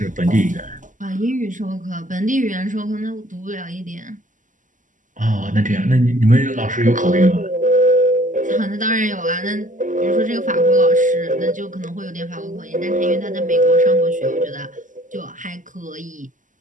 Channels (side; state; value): left; late; 0.37 ms